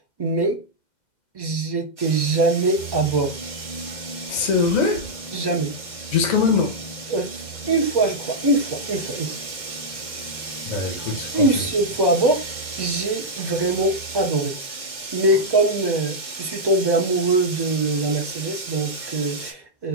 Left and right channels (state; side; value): late; right; 2.1 ms